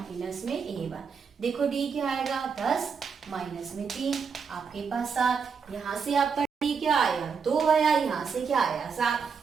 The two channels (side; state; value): left; quieter; 5.9 dB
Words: में a1। देखो d क्या आएगा 10 माइनस में 3 आपके पास 7। यहाँ से आपका d क्या आया 2 आया, यहाँ से क्या आया